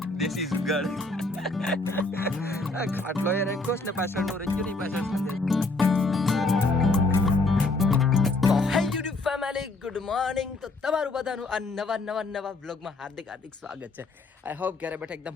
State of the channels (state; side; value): quieter; right; 3.1 dB